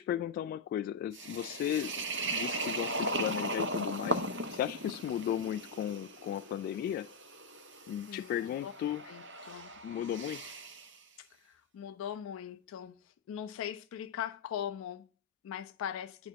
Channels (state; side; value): quieter; right; 4.7 dB